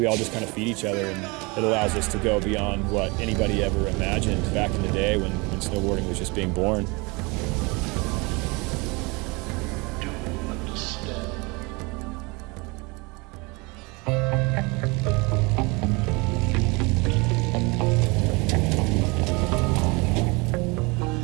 all just kind of feed each other, and it allows us to go beyond what anybody ever imagined back in the day when snowboarding was just being born.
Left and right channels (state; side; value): quieter; left; 27.2 dB